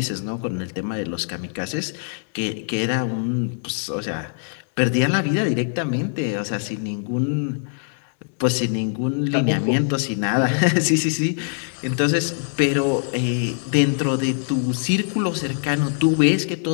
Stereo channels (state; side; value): silent; right; digital silence